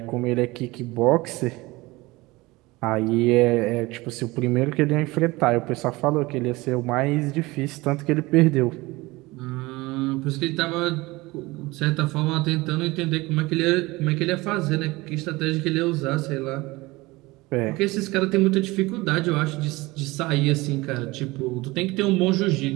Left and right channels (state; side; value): quieter; left; 21.5 dB